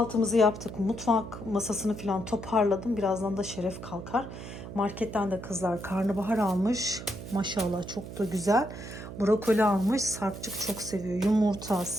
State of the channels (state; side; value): noise; right; hum, 11 dB below the sound